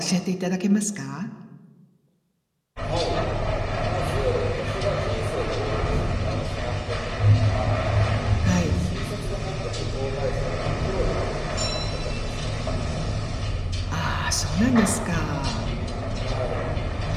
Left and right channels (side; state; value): both; identical; correlation 1.00